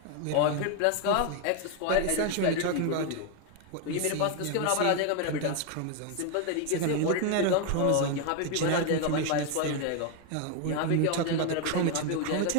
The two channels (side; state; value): both; different; correlation 0.01